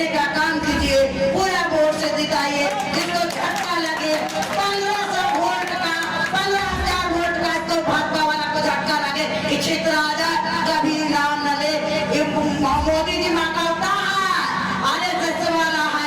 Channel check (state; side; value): identical; both; correlation 1.00